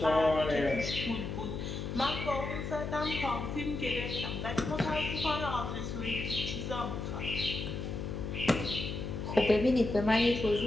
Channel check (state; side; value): noise; left; hum, 5 dB below the sound